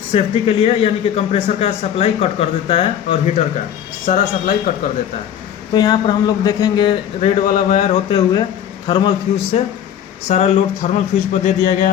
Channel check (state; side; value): quieter; right; 9.6 dB